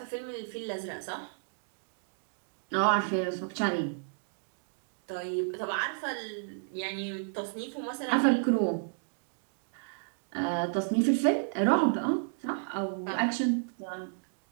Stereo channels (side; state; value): left; silent; digital silence